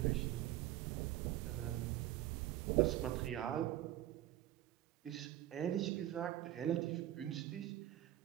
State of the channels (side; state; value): left; quieter; 13.7 dB